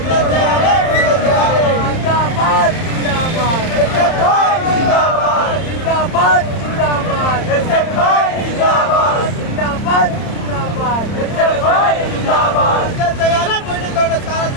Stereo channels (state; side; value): late; right; 31 ms